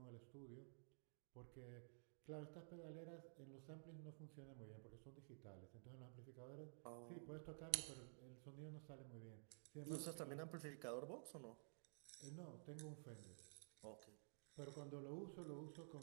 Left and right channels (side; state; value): left; silent; digital silence